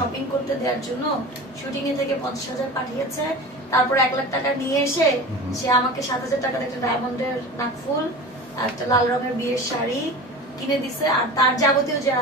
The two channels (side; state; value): both; normal; correlation 0.33